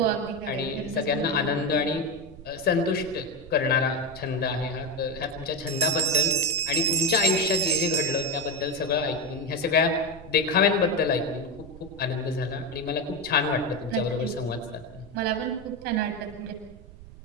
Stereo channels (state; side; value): noise; right; rumble, 18 dB below the sound